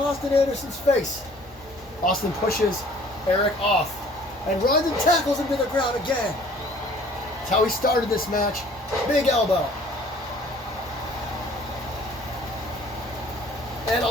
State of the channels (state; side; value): normal; both; correlation 0.54